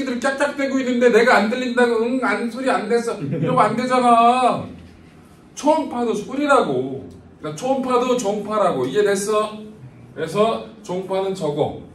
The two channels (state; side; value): identical; both; correlation 1.00